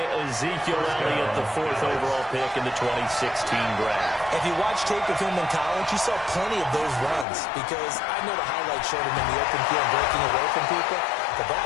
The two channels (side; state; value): right; drops out; at 7.2 s